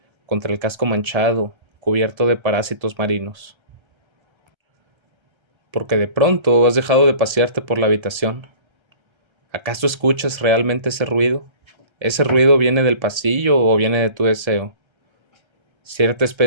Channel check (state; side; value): late; left; 1.3 ms